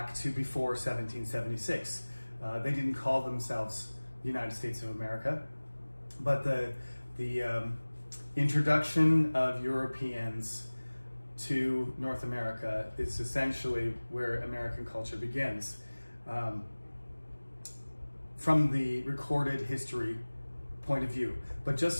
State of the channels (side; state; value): both; inverted; correlation -1.00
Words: to before 1776. They didn't call themselves the United States of America, but the introduction of Europeans to North America is essentially where American culture begins. From the recorded history point of view. But